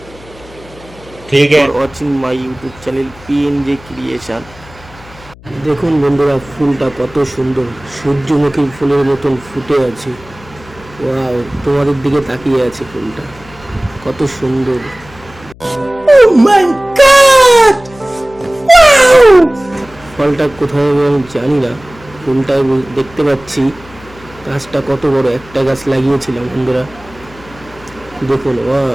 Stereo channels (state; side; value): noise; left; hum, 22 dB below the sound